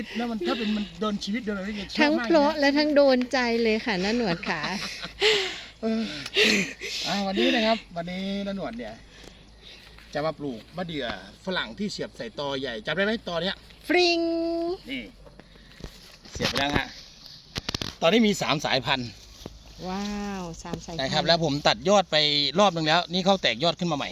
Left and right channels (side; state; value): both; identical; correlation 1.00